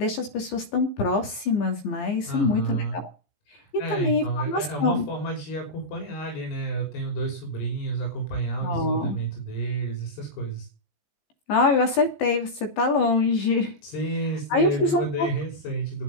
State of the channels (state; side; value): late; right; 15 ms